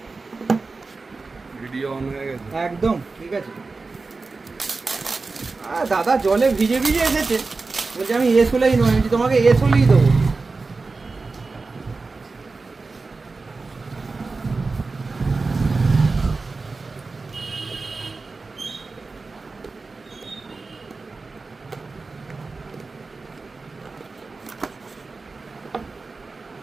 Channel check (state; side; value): quieter; left; 3.9 dB